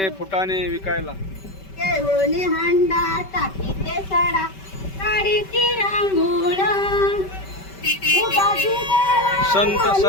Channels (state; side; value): late; right; 5.2 ms